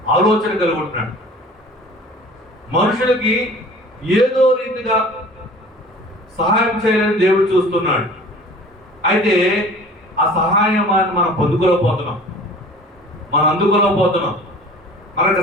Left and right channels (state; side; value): normal; both; correlation 0.45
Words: ఆలోచన కలిగి ఉంటున్నాడు. మనుషులకి ఏదో రీతిగా సహాయం చేయాలని దేవుడు చూస్తున్నాడు. అయితే ఆ సహాయాన్ని మనం పొందుకోలేకపోతున్నాం, మనం అందుకోలేకపోతున్నాం. మనకు